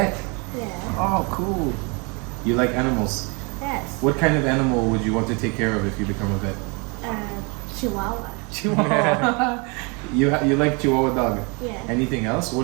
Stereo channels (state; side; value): quieter; left; 31.6 dB